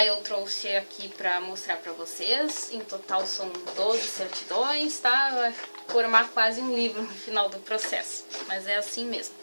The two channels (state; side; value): inverted; both; correlation -1.00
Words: eu trouxe aqui pra mostrar pra vocês, em total são 12 certidões, tá? Vai formar quase um livro no final do processo, mas é assim mesmo.